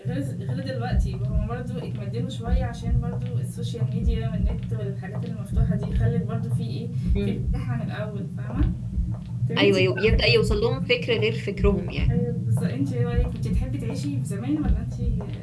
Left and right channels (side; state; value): both; identical; correlation 1.00